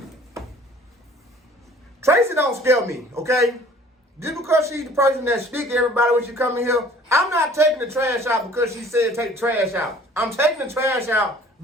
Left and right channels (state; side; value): normal; both; correlation 0.52